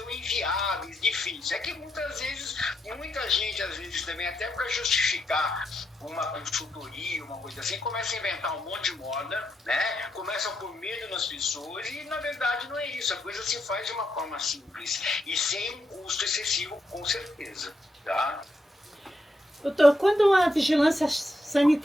inviáveis, difíceis. É que muitas vezes, muita gente, às vezes também, até para justificar uma consultoria, uma coisa assim, começa a inventar um monte de moda, né? Começa a pôr medo nas pessoas e, na verdade, não é isso. A coisa se faz de uma forma simples e sem um custo excessivo, com certeza, tá? Doutor, quando a vigilância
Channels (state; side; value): normal; both; correlation 0.81